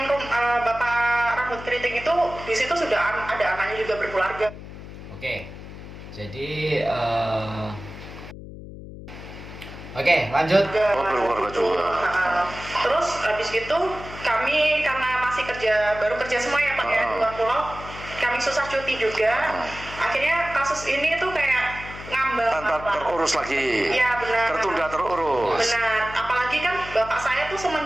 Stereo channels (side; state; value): left; noise; hum, 13 dB below the sound